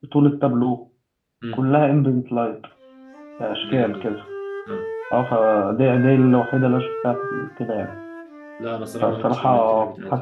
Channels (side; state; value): both; identical; correlation 1.00